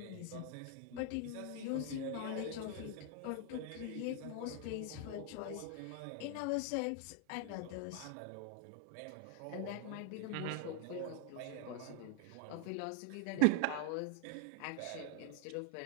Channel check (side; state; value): both; different; correlation 0.00